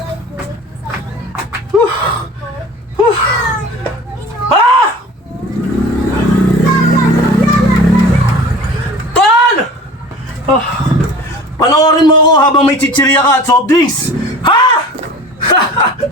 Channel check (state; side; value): normal; both; correlation 0.41